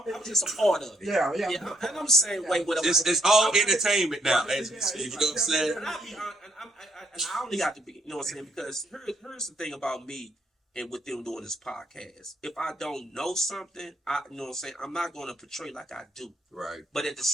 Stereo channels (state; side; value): normal; both; correlation 0.72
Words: just a part of it. Yeah. And I'm saying, wait, whatever. It's all entertainment now. You know what I'm saying? And I only got to be, you know what I'm saying? Because here's the thing about me and with them doing this podcast. If I don't know something, you know what I'm saying, I'm not going to portray like I do. Right. But at the